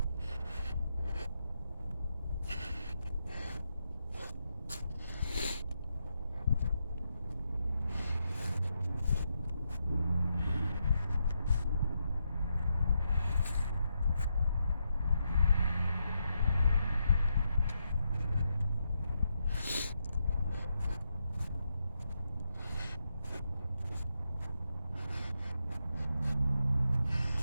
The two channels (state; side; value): inverted; both; correlation -0.83